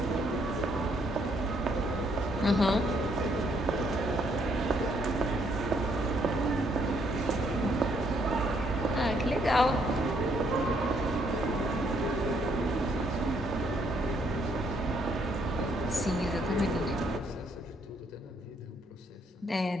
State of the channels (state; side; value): normal; both; correlation 0.70